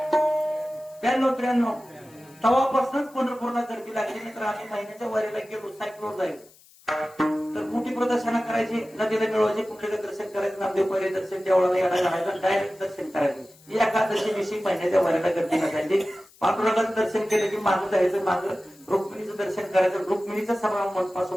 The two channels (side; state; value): left; noise; hiss, 27 dB below the sound